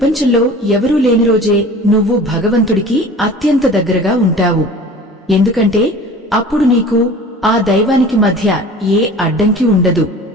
ఎవరూ లేని రోజే నువ్వు భగవంతుడికి అత్యంత దగ్గరగా ఉంటావు. ఎందుకంటే అప్పుడు నీకు ఆ దైవానికి మధ్య ఏ అడ్డంకి ఉండదు.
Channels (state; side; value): normal; both; correlation 0.42